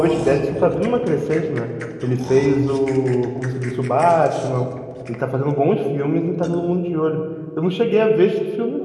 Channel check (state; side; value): identical; both; correlation 1.00